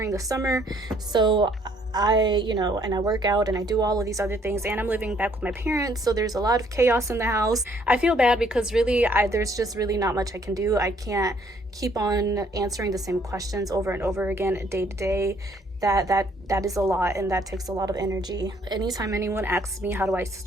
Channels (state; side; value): normal; both; correlation 0.64